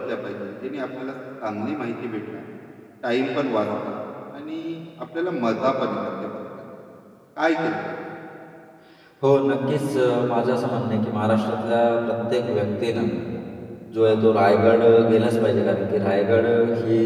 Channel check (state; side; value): identical; both; correlation 1.00